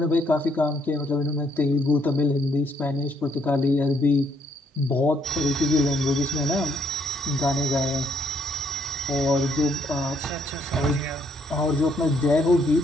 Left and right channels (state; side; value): normal; both; correlation 0.71